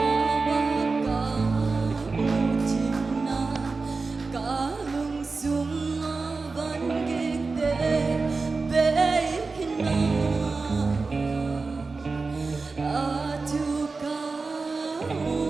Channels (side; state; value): left; quieter; 4.1 dB